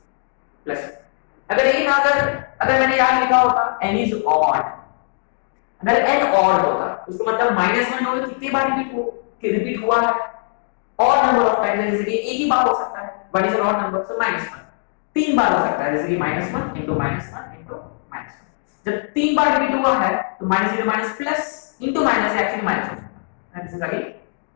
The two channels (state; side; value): silent; right; digital silence